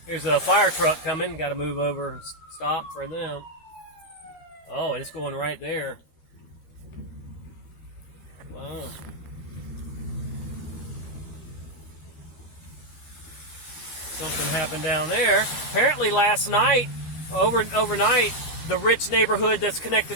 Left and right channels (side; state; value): right; late; 13 ms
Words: There's a fire truck coming. Got to move over and stop for them. Oh, and it's going right there. Wow. Something happened down there. Apparently last night, overnight, the rich neighborhood that's connected